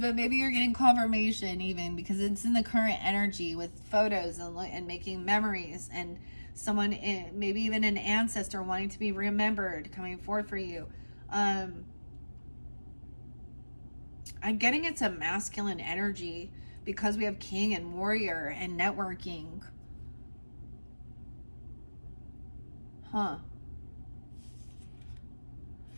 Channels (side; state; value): both; inverted; correlation -1.00